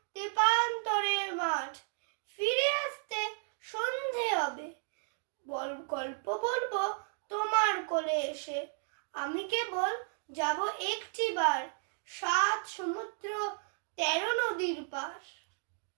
তেপান্তরের মাঠ। ফিরে আসতে সন্ধে হবে, গল্প বলবো তোমার কোলে এসে। আমি কেবল যাব একটিবার 7 সমুদ্র 13 নদীর পার।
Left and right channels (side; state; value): left; silent; 55 dB below the other